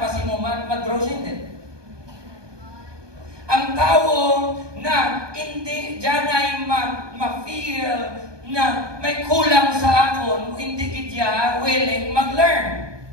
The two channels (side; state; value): left; late; 1.2 ms